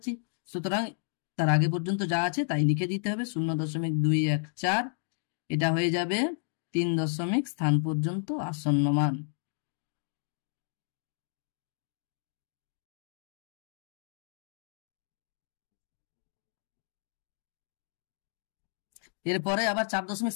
সুতরাং তার আগে পর্যন্ত যা আছে তাই লিখে দিতে হবে 0.214। এটা হয়ে যাবে 3 দশমিক স্থান পর্যন্ত আসন্ন মান। এরপরে আবার 4 দশমিক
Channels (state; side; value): silent; right; digital silence